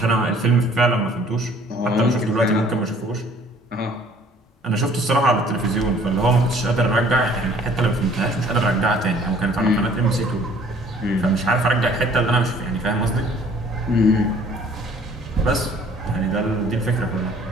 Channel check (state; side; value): normal; both; correlation 0.55